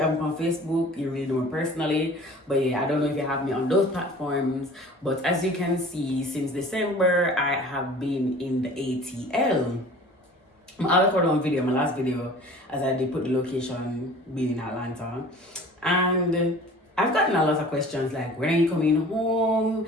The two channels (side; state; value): both; normal; correlation 0.45